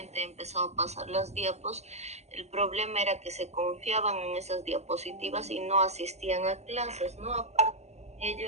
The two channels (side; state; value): left; late; 0.32 ms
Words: he empezado a pasar las diapos, el problema era que se confiaban en esas diapositivas y no asistían a clases, ¿no? Aparte de ello